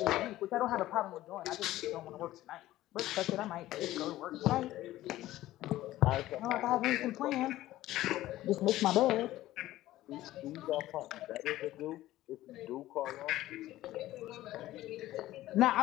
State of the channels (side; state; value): right; quieter; 15.4 dB